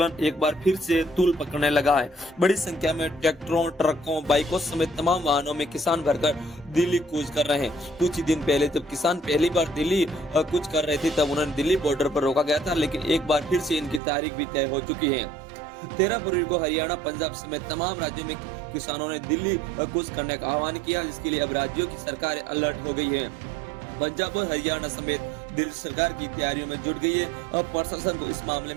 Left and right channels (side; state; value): left; drops out; at 14.0 s